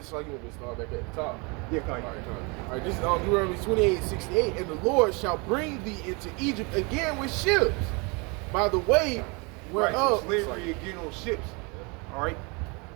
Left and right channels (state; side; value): quieter; left; 29.9 dB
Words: like you want me to start back at the top. Yeah, come on. All right, this is on Deuteronomy 28:68. And the Lord shall bring thee into Egypt again with ships. By the way, whereof. So slavery again on ships. All right?